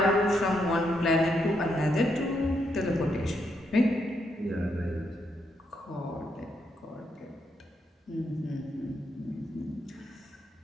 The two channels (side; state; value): both; normal; correlation 0.78